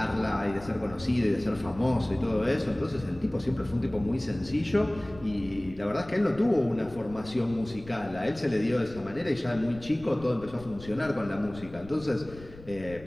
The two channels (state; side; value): noise; left; rumble, 17 dB below the sound